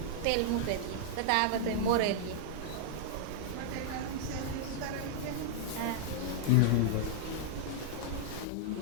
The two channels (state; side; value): different; both; correlation -0.01